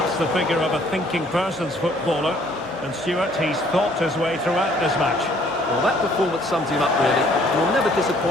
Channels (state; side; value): normal; both; correlation 0.61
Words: the figure of a thinking person's footballer, and Stuart, he's thought his way throughout this match. Well, that performance sums him up, really. You're never